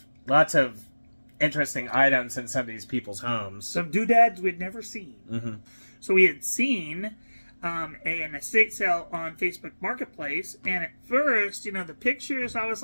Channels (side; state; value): both; inverted; correlation -1.00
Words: interesting items in some of these people's homes. Some doodads we'd never seen. Mm-hmm. So we had seen an estate sale on Facebook Marketplace, and at first, the pictures, I was